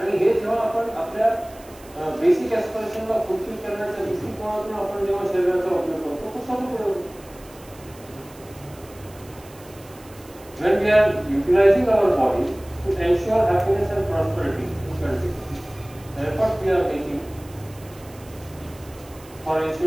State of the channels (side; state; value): right; noise; hiss, 23 dB below the sound